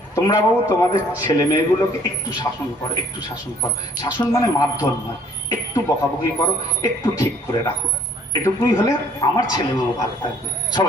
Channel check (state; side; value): normal; both; correlation 0.59